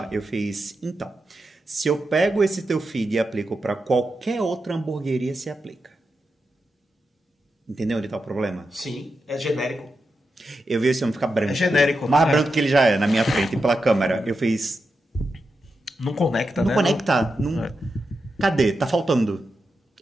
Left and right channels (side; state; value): both; normal; correlation 0.88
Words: Eu fiz, então, se eu pego esse teu feed e aplico para qualquer outra hamburgueria, se aplica. Entendeu onde tá o problema? Sim, é genérico. Eu vi esse homem ficar branco. É genérico, Mais né? branco que ele já é, na minha frente, pela câmera. Eu fiz... Não conecta, Não né? conecta. Não... É. Cadê? Tá faltando.